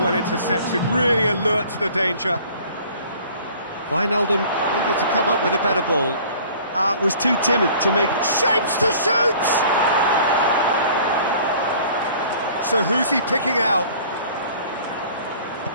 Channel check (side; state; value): both; inverted; correlation -0.50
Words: well intercepted, really alert to the danger. Wijnaldum needed to come up with a better ball. Was too timid to make... Shapes to shoot! So who's he picking out?